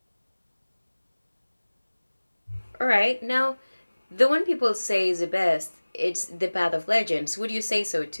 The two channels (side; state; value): both; inverted; correlation -1.00